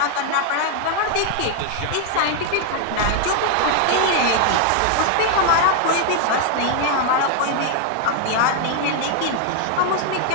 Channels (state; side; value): different; both; correlation 0.00